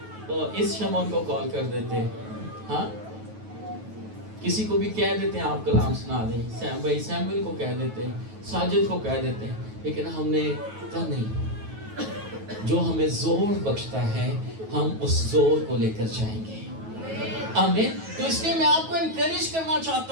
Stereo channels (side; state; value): left; late; 9.3 ms